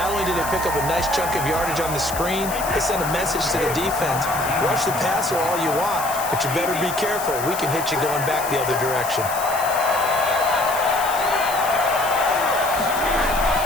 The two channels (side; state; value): left; noise; hiss, 9 dB below the sound